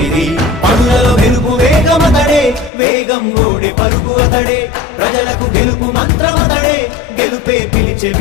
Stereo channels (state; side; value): drops out; right; at 2.7 s